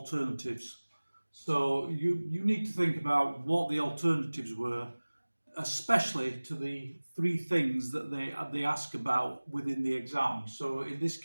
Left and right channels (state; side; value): inverted; both; correlation -1.00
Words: So you need to think about what the alternatives were, especially to the 3 things that they ask about within the exam. So in this